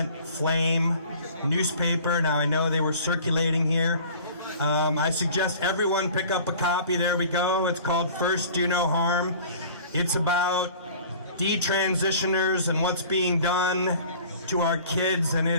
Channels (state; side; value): inverted; both; correlation -0.47